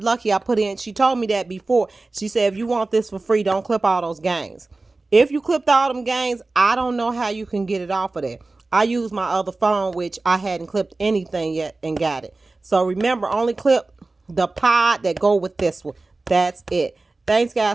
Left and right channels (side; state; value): left; quieter; 3.3 dB